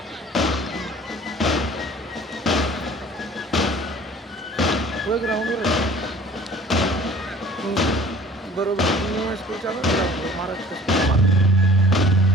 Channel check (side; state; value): both; normal; correlation 0.49